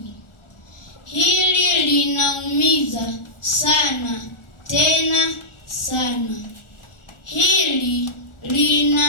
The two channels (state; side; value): late; right; 1.4 ms